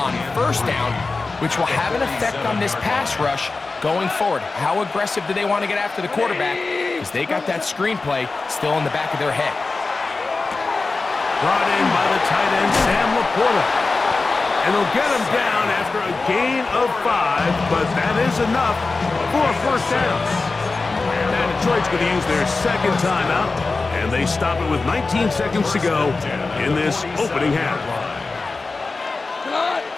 1st down, which will have an effect on this pass rush going forward. How aggressive do they want to get after the quarterback? Because they got that screen play still in the back of their head. Brought in by the tight end, Sam Laporta. And they'll get him down after a gain of 5, but that is enough for a 1st down. Now Detroit's going to use their 2nd timeout, and they stop it with 19 seconds to go in this opening half.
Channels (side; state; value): right; quieter; 3.8 dB